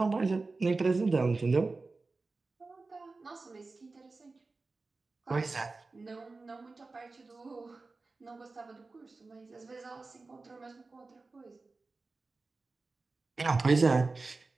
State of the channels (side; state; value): left; quieter; 3.7 dB